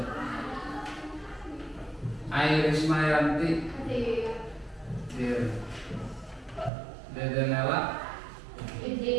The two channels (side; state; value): left; drops out; at 6.7 s